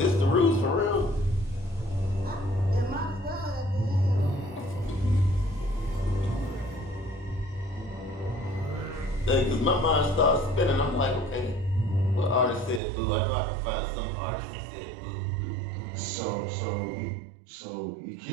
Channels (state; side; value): drops out; left; at 12.8 s